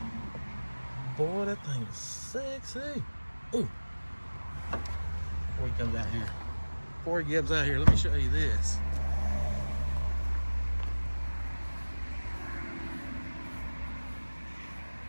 Boy, that thing is sexy. Ooh. Before he comes out here. Before he gets out here, let me show you this.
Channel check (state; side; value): inverted; both; correlation -1.00